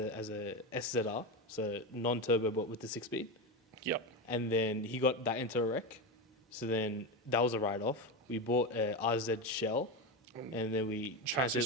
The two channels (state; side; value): normal; both; correlation 0.16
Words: as a SZR, so non-turbo but with the 6-speed. Yep. And then he got that into a wreck. So then that was a write-off. We bought a RZ shell, and then we transferred